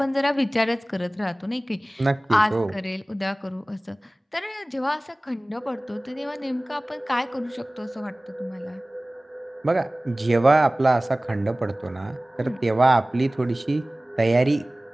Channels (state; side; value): normal; both; correlation 0.98